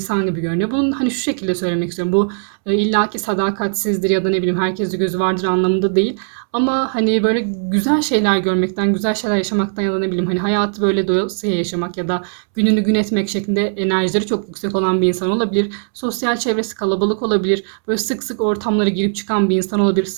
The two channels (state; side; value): silent; left; 67 dB below the other